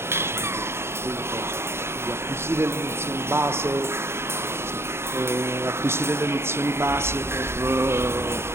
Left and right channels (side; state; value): left; late; 0.12 ms